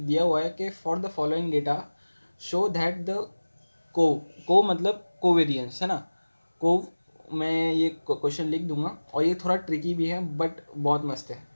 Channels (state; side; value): inverted; both; correlation -1.00